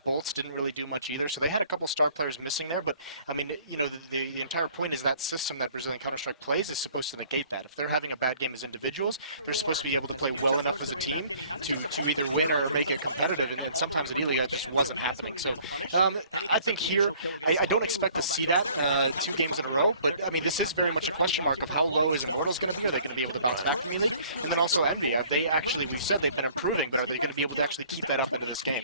Bolts didn't really do much either. So they had a couple star players missing there, but I mean, you know, the entire point is that system that Brazilian Counter-Strike plays is supposed to negate that. If they're having a bad game as individuals, they're supposed to be able to play well enough as a team to either win or make it competitive, and sometimes at E-League that just wasn't happening. So I think here, I don't expect to see that 2 games in a row, but I mean, this is very much a question mark of how low is Immortals going to be? Are they going to be able to bounce back from E-League? And then also Envy, we've said they've been improving, but are they going to be able to actually keep that up into this game?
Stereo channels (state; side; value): inverted; both; correlation -0.56